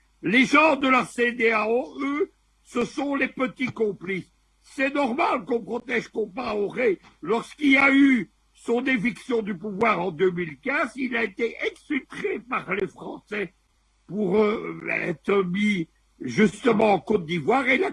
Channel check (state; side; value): identical; both; correlation 1.00